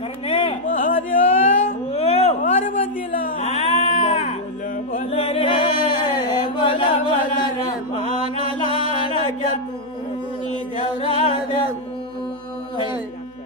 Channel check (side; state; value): left; noise; hum, 30 dB below the sound